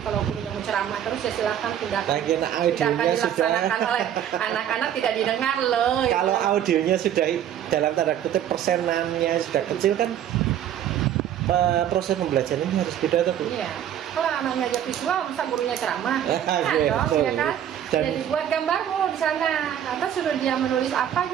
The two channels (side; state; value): left; quieter; 10.4 dB